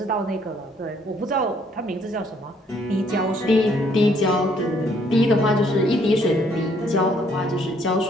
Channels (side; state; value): both; normal; correlation 0.66